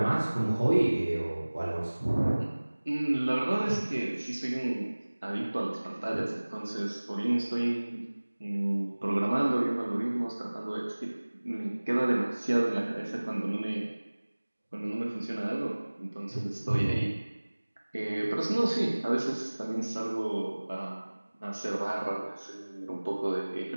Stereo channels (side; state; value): both; inverted; correlation -1.00